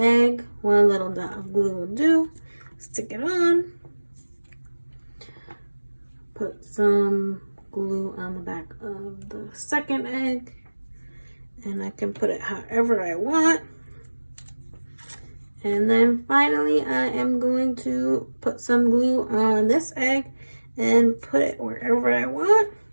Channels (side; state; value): both; inverted; correlation -1.00